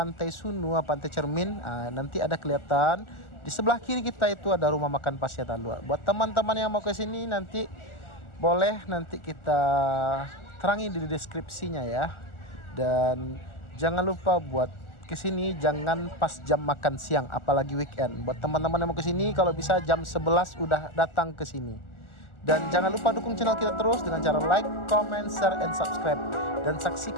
Sunua, pantai Cermin, nanti ada kelihatan di sebelah kiri kita itu ada rumah makan Pasya Talua. Buat teman-teman yang mau ke sini nanti boleh nanti kita terangi di deskripsinya ya. Dan jangan lupa buat kesini jangan pas jam makan siang, apalagi weekend. Buat teman-teman yang mau kesini kalau bisa jam 11 udah datang ke sini. Dan jangan lupa dukung channel kita terus dengan cara like, comment, share, and subscribe. Dan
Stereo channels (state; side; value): late; right; 1.4 ms